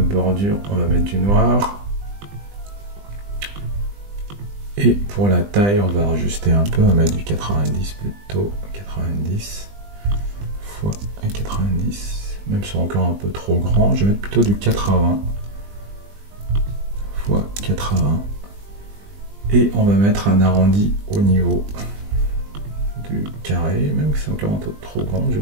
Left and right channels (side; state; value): left; late; 20 ms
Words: on va mettre du noir. Et pour la taille, on va ajuster un peu, on va mettre du 90 plutôt, 90 fois 90, même si c'est encore un peu trop grand, je vais mettre plutôt du 80 fois 80, et on va mettre un arrondi au niveau du carré, même si c'est encore un peu trop grand, je